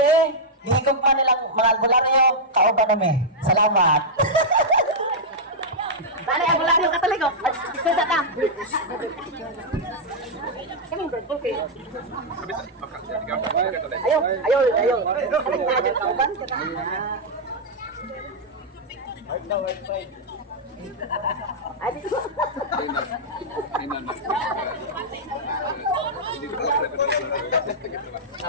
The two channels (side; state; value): both; normal; correlation -0.06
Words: eh. Hihigog pa nilang mga albularyo, kauban namin. Salamat. Bale, albularyo Katoliko. Ito sa tam. Ayaw. Kauban.